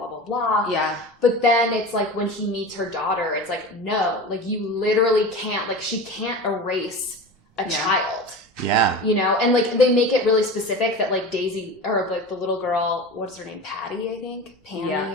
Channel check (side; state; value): both; normal; correlation 0.31